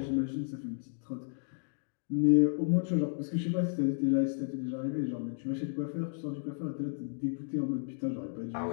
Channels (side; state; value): right; silent; digital silence